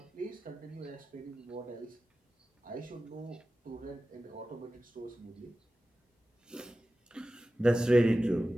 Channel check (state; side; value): normal; both; correlation 0.95